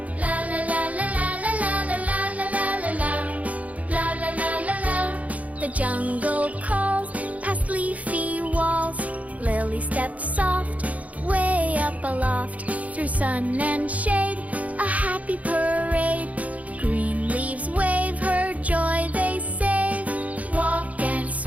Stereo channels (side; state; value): left; late; 0.070 ms